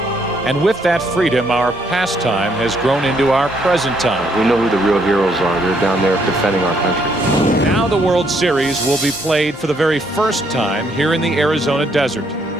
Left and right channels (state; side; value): normal; both; correlation 0.71